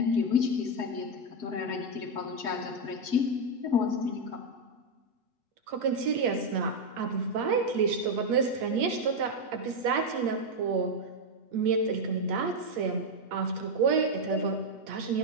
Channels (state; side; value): late; left; 8.6 ms